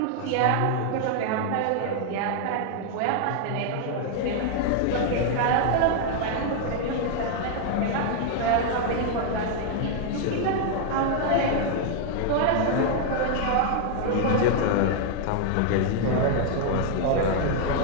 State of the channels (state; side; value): different; both; correlation 0.00